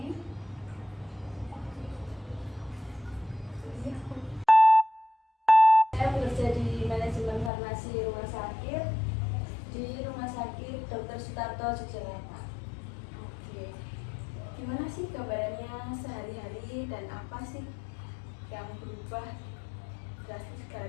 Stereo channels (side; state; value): right; drops out; at 7.5 s